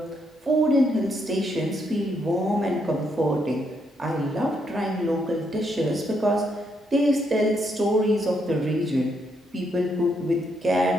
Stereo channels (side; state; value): both; normal; correlation 0.76